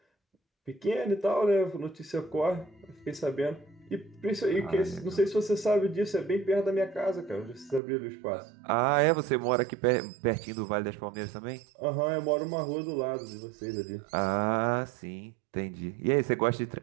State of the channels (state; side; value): drops out; left; at 7.8 s